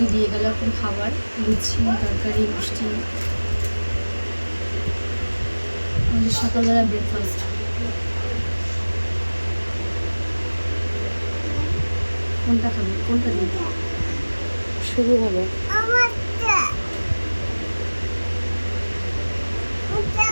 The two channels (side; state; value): both; inverted; correlation -1.00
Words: দিয়ে গেল এখন খাবার, লুচি তরকারি মিষ্টি, আমাদের সকালবেলা ব্রেকফাস্ট। কোনটা খাবে, কোনটা দিই? শুরু হবে।